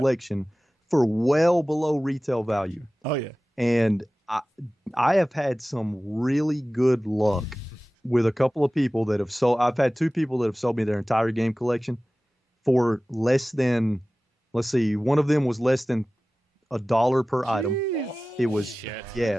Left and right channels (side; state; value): both; normal; correlation 0.97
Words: for well below retail value. Oh yeah. And I have had some really good luck with a couple of people that have sold. I've had two people that have sold me their entire game collection for less than, let's see, one of them was less than $1 per item. It was